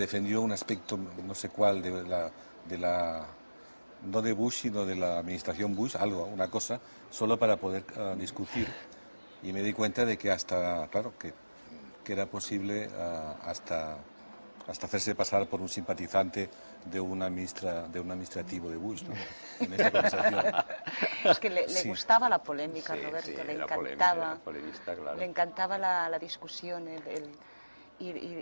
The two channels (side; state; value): both; inverted; correlation -1.00